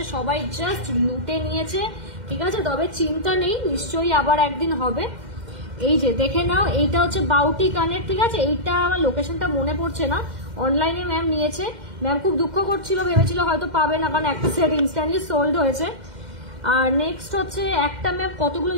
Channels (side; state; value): left; late; 2.1 ms